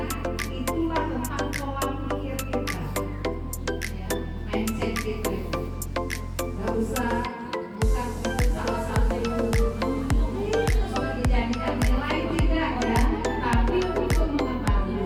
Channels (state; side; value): identical; both; correlation 1.00